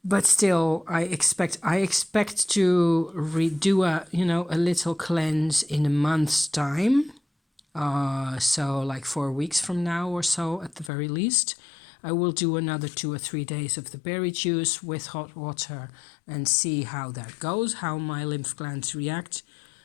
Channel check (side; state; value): right; drops out; at 10.9 s